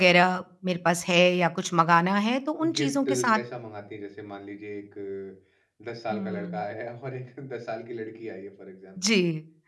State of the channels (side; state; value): both; identical; correlation 1.00